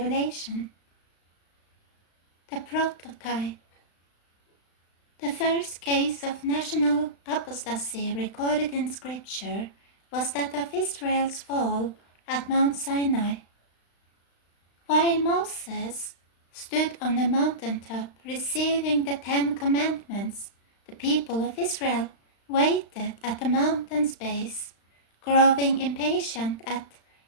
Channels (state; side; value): late; right; 35 ms